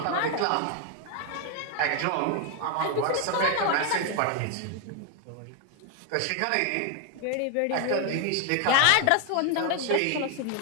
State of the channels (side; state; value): both; different; correlation 0.01